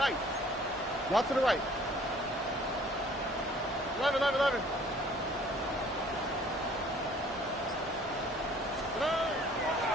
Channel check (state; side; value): normal; both; correlation 0.55